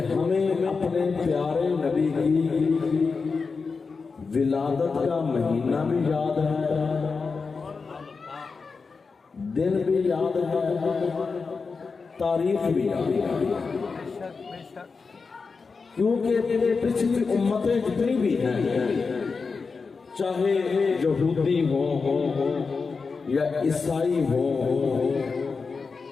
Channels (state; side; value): quieter; right; 4.7 dB